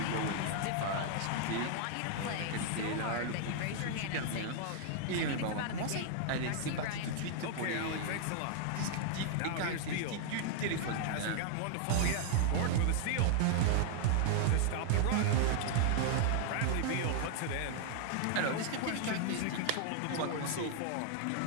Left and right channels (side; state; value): both; different; correlation -0.01